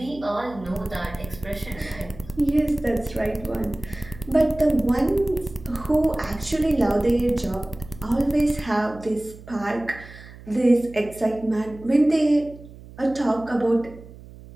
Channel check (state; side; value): noise; right; hum, 18 dB below the sound